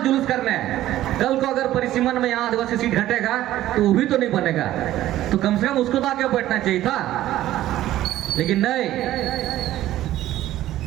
करने। कल को अगर परिसीमन में यहाँ आदिवासी सीट घटेगा तो वो भी तो नहीं बनेगा, तो कम से कम उसको तो आके बैठना चाहिए था। लेकिन नहीं,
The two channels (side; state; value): left; quieter; 14.0 dB